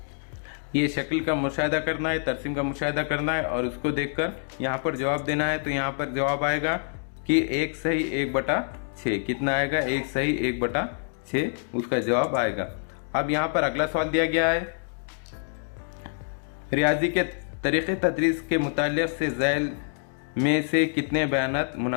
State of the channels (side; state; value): right; silent; digital silence